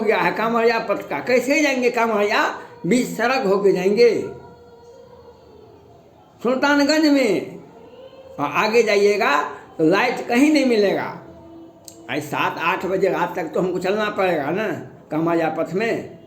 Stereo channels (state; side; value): identical; both; correlation 1.00